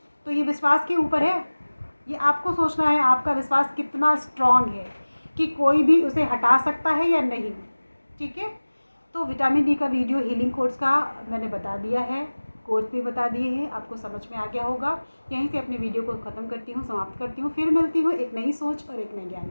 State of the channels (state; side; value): inverted; both; correlation -1.00